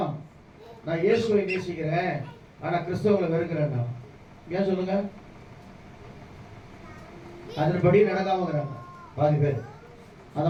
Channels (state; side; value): identical; both; correlation 1.00